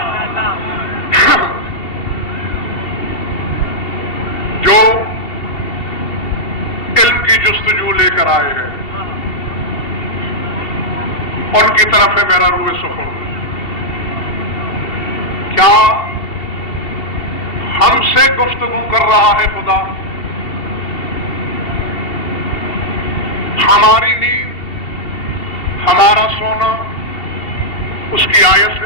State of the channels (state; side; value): late; right; 2.7 ms